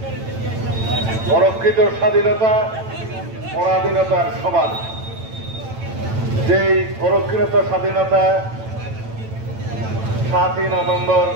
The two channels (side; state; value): left; late; 9.0 ms